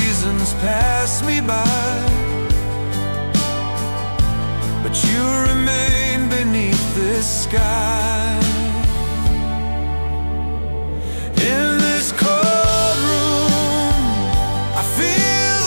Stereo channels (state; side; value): inverted; both; correlation -1.00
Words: pass me by, but you remain beneath this sky. In this cold room, I feel